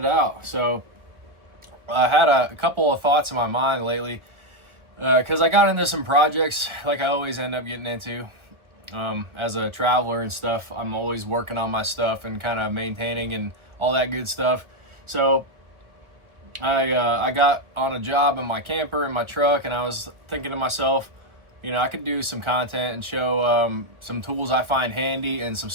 out. So I had a couple of thoughts in my mind lately because I got into some projects like I always end up getting into. As a traveler and stuff, I'm always working on my stuff and kind of maintaining and all that good stuff. So I got on a job in my camper in my truck, and I was thinking to myself, I could do some content and show some tools I find handy and some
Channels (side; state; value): left; late; 1.4 ms